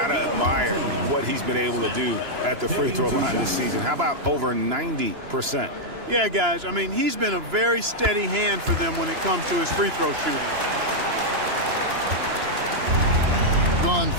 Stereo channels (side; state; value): left; late; 2.9 ms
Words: admire what he's been able to do at the free throw line this season. How about over 90%? Yeah, guys, I mean, he's been a very steady hand for them when it comes to his free throw shooting. Gone